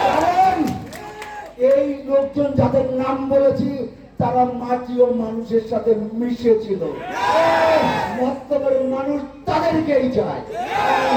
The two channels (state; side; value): identical; both; correlation 1.00